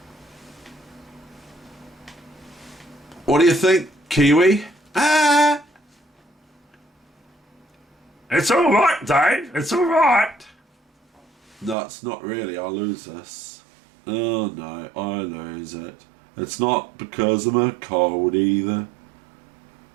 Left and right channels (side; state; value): left; drops out; at 11.8 s